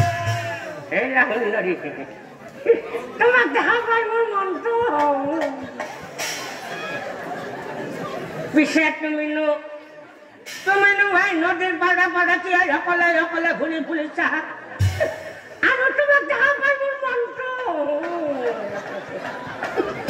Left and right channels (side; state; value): both; identical; correlation 1.00